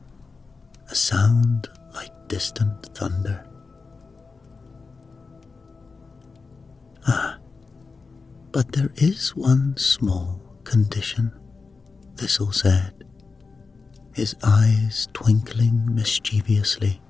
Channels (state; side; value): quieter; right; 4.4 dB